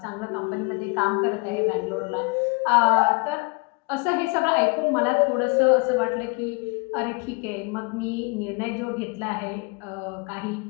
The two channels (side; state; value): right; quieter; 31.6 dB